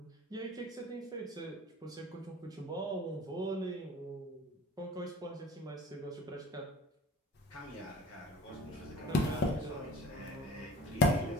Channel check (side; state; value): both; normal; correlation 0.44